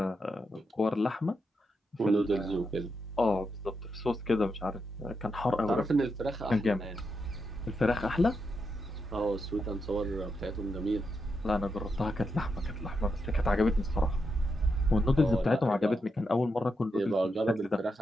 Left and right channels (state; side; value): normal; both; correlation 0.84